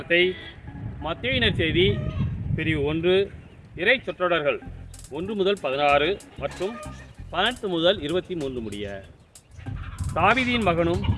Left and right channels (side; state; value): both; identical; correlation 1.00